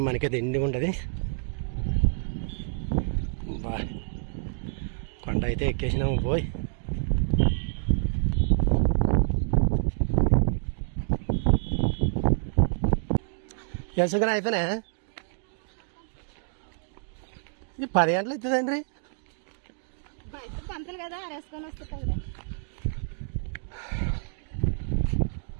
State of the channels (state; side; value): silent; left; digital silence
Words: మనకైతే ఎండి ఉంటుంది. బా కొండ అయితే ఎక్కేసినాము పోయి. ఎంతగా అయిపోయినా ఇది 10 గంటలు అవుతుందండి.